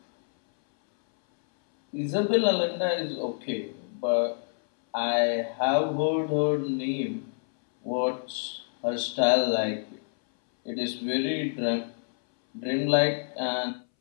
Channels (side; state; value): right; silent; 60 dB below the other